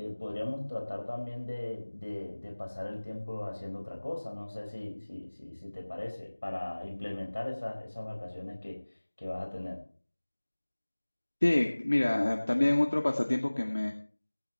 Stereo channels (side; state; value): both; inverted; correlation -1.00